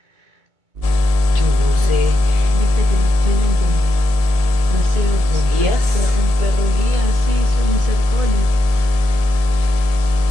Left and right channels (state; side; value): late; left; 1.8 ms